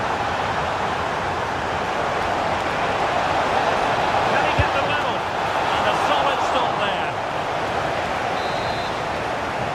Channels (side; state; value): both; identical; correlation 1.00